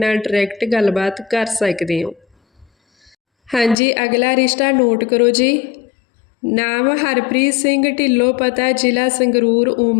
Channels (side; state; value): right; drops out; at 3.8 s